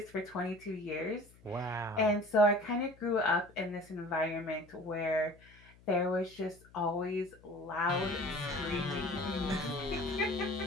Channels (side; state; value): left; noise; hum, 25 dB below the sound